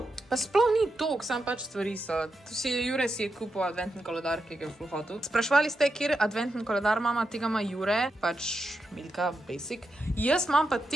Pa sploh ni toliko, sam pač stvari so. Jure si je kupil adventni koledar, ki ga je ful hotel. Sprašvali ste, kjer adventni koledar mama, tega ima Jure, pač Milka, basic. Jaz imam pa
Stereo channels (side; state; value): both; normal; correlation 0.86